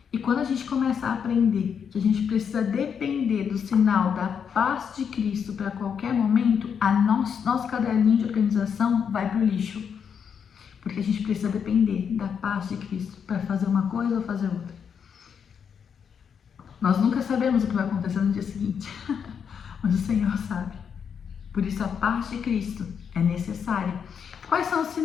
E quando a gente começa a aprender que a gente precisa depender do sinal da paz de Cristo para qualquer momento, nosso caderninho de organização vai para o lixo. Porque a gente precisa depender da paz de Cristo para fazer uma coisa ou fazer outra. Nós nunca sabemos o que vai acontecer no dia seguinte, mas o Senhor sabe. Por isso a paz de Cristo é necessária. Quais são os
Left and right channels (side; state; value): right; quieter; 7.2 dB